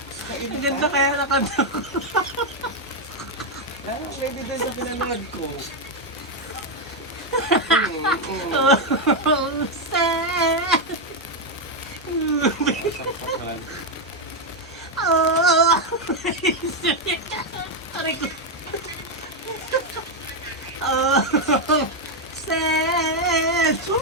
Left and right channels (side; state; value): both; normal; correlation 0.03